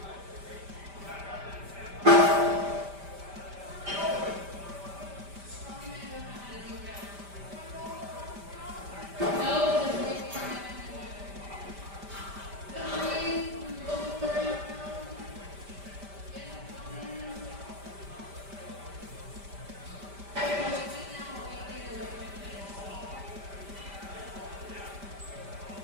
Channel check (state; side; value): late; left; 5.1 ms